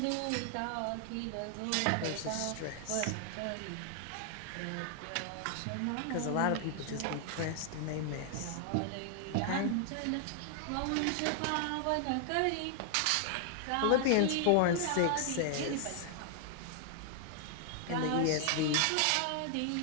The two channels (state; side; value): different; both; correlation 0.00